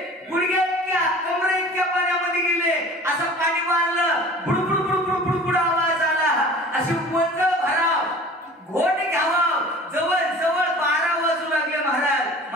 गुडघ्या इतक्या कमरे इतक्या पाण्यामध्ये गेले, असं पाणी मारलं, बुडबुड बुडबुड बुडबुड आवाज आला, अशी वंज भराव घोट घ्यावा, जवळ जवळ 12 वाजू लागले महाराज.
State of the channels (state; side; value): normal; both; correlation 0.43